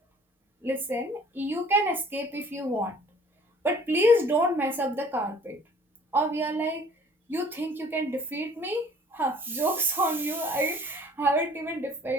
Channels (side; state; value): both; normal; correlation 0.53